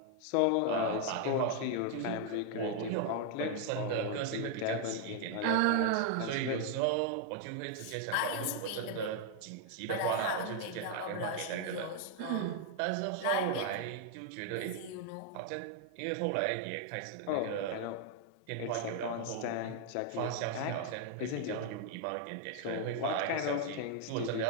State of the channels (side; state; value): both; different; correlation 0.00